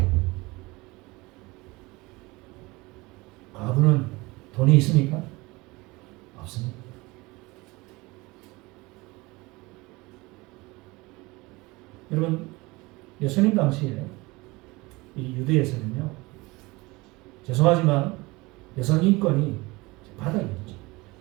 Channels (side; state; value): left; quieter; 22.9 dB